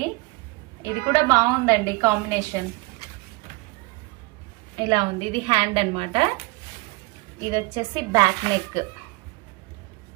ఇది కూడా బాగుందండి కాంబినేషన్, ఇలా ఉంది. ఇది హ్యాండ్ అన్నమాట. ఇది వచ్చేసి బ్యాక్ నెక్.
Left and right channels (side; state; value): left; quieter; 24.2 dB